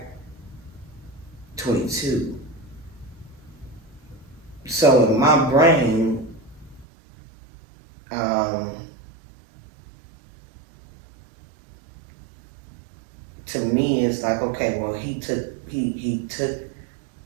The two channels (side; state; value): left; drops out; at 6.9 s